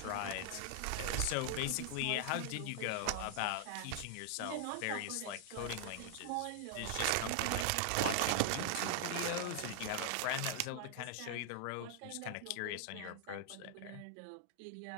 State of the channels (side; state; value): both; different; correlation 0.00